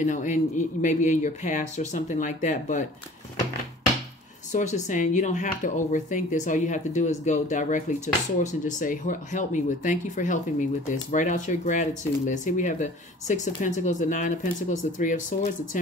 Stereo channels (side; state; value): both; normal; correlation 0.47